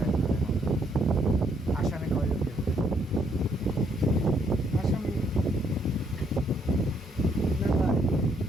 আসামি কয়জন? আসামি মেলায়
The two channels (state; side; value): normal; both; correlation 0.71